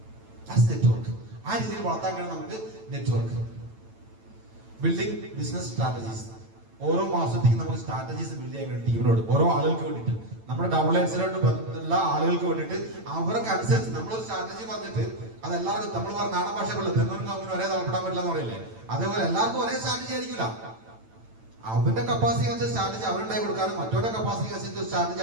നെറ്റ്വർക്ക് ആ രീതിയിൽ വളർത്താൻ കഴിയും നമുക്ക്. Network building business strategies. ഓരോ മാസത്തേക്ക് നമുക്ക് സ്ട്രാറ്റജീസ് ബിൽഡ് ചെയ്യാൻ കഴിയും ടീമിനോട്, ഓരോ ആളുകൾക്ക് വേണ്ടിയിട്ട്, നമ്മുടെ ഡൗൺലൈൻസിലോട്ട് ബന്ധമുള്ള ആളുകൾക്ക് വേണ്ടിയിട്ട്. അവർക്ക് അനുസരിച്ച് നമ്മളൊരു സ്ട്രാറ്റജി പറഞ്ഞിട്ട് അത് എല്ലാവർക്കും, നമ്മൾ പറഞ്ഞ നാടൻ ഭാഷ പോലെ തെന്നൂരിന് ഒന്നിനും ഒരേ തലപ്പെടാൻ പറ്റില്ല എന്ന് പറയില്ലേ, അതേപോലെ എല്ലാവർക്കും ഒരേ സ്ട്രാറ്റജി ആയിരിക്കില്ല. അവന്റെ കപ്പാസിറ്റി അനുസരിച്ച് സ്ട്രാറ്റജി അവനുണ്ടായി കൊടുക്കാനും മറ്റവരുടെ കപ്പാസിറ്റി അനുസരിച്ച് സ്ട്രാറ്റജി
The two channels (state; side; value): late; left; 9.0 ms